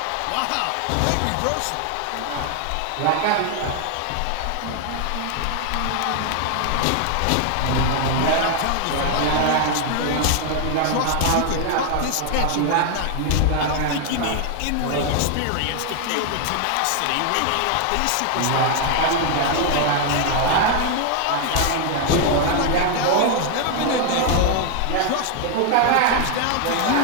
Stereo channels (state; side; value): different; both; correlation 0.00